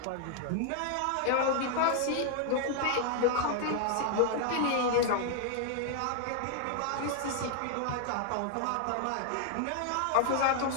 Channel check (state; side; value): different; both; correlation 0.00